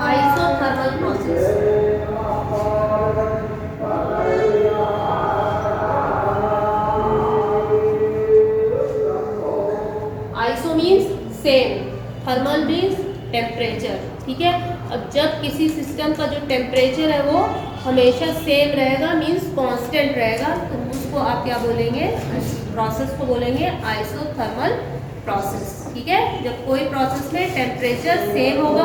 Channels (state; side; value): identical; both; correlation 1.00